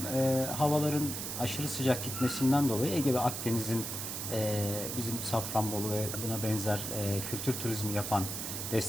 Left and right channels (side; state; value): right; noise; hiss, 4 dB below the sound